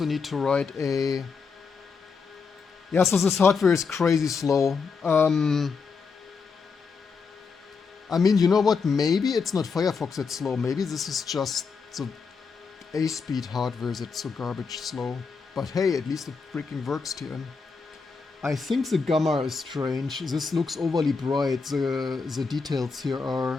need to write a... Yeah, so this hardware is crazy slow. I mean, you know what? Maybe it's not Firefox that's slow. Maybe this is just the A-speed hardware that's so garbage slow. But hey, at least it freaking works, TN. I think the gamma is strange. This looks overly bright. The details here are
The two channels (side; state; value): right; quieter; 5.1 dB